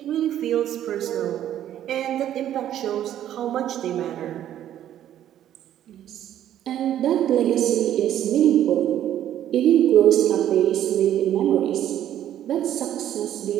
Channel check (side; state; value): left; quieter; 11.4 dB